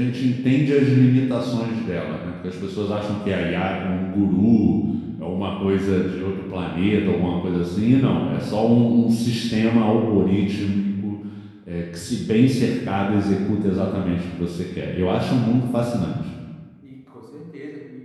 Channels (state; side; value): identical; both; correlation 1.00